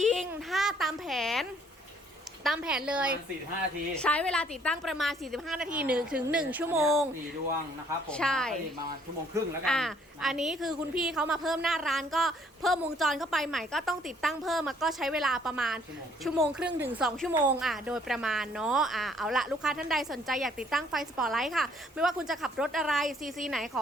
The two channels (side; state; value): both; normal; correlation 0.63